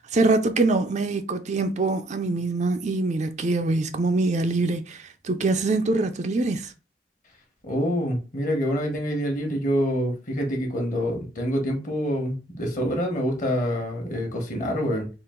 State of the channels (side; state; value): both; normal; correlation 0.65